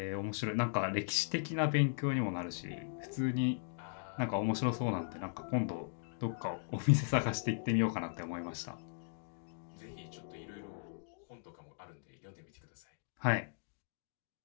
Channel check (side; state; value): right; silent; digital silence